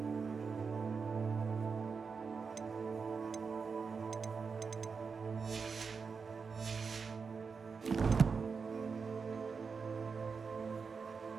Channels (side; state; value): left; quieter; 5.3 dB